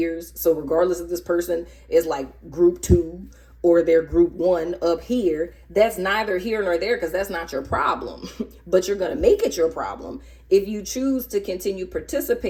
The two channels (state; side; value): identical; both; correlation 1.00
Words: so regardless if this person is like group 2 or they're group 1 up here, that's neither here nor there, because that's not your problem. But you're going to make it your problem if you choose to continue